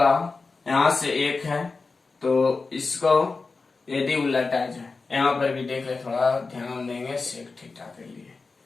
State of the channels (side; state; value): right; quieter; 4.1 dB